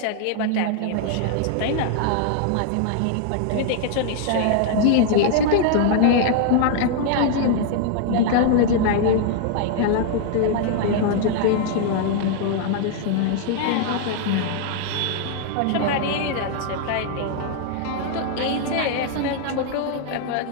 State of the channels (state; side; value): different; both; correlation -0.01